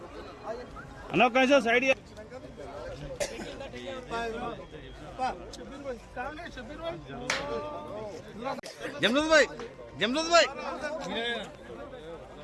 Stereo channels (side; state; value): both; identical; correlation 1.00